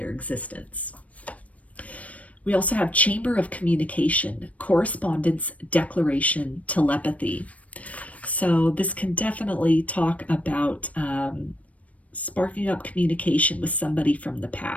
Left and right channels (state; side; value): late; right; 0.067 ms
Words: existence. We also have chamber of communication, correspondence, declaration, telepathy. So this can definitely talk about sparking up communication with somebody from the